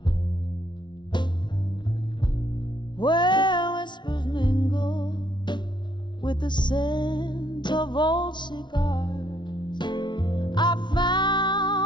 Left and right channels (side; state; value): right; late; 0.22 ms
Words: where whispers mingle with the scent of old cigars, I